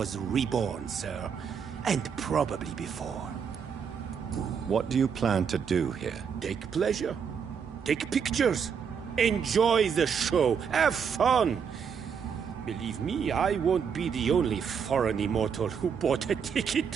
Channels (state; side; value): quieter; left; 6.9 dB